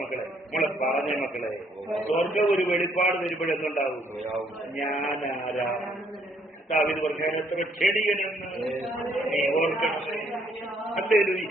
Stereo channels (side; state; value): both; normal; correlation 0.67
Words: മക്കളെ? നമ്മളെ പറഞ്ഞ മക്കളെ, സ്വർഗം ഒരു വെളിപ്പാട് വരുമ്പോഴെന്തുണ്ടാവും? ഞാനാരാ? ദാവീദ് പറഞ്ഞാൽ എത്ര ക്ഷണികനെന്ന് നീ ഓർക്കണമേ.